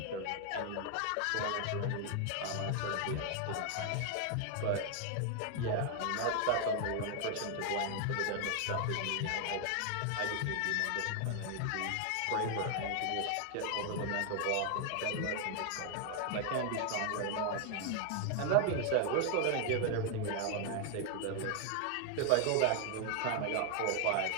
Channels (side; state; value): both; different; correlation 0.00